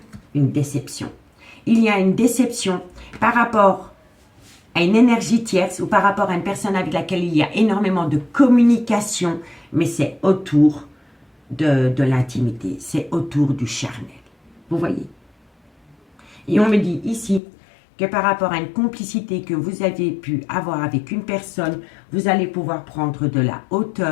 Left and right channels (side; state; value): right; drops out; at 17.4 s